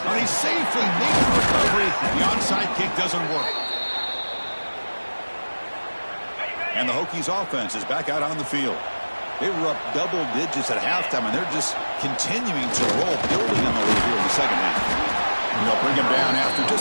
And he safely makes the recovery. The onside kick doesn't work. And the Hokies offense is back out on the field. They were up double digits at halftime, and they're just continuing to roll, building on the lead here in the second half. And they'll bring him down after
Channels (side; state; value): both; inverted; correlation -1.00